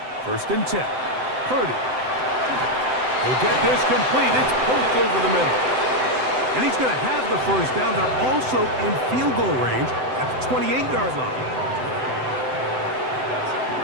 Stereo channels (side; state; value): left; late; 7.8 ms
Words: First and 10. Purdy. He'll get this complete. It's poked over the middle. And he's going to have the first down. They're also in field goal range at the 28-yard line.